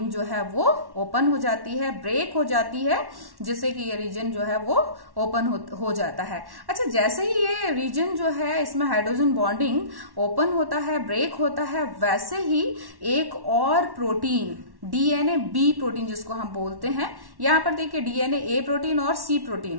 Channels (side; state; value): left; late; 1.1 ms